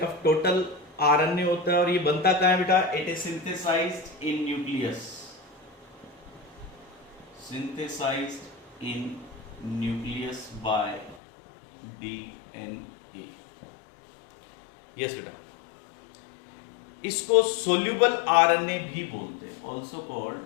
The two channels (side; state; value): right; drops out; at 11.2 s